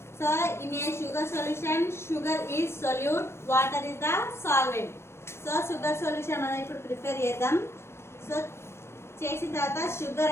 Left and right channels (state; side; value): late; right; 0.12 ms